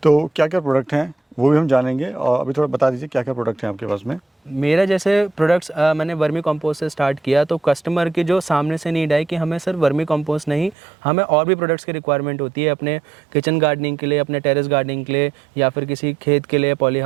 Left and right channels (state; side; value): drops out; left; at 10.8 s